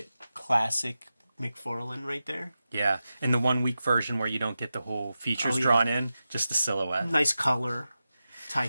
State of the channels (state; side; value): inverted; both; correlation -0.92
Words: Classic McFarlane right there. Yeah, and the 1 week version where you don't get the whole features drawn in, just the silhouette. Nice color. Tie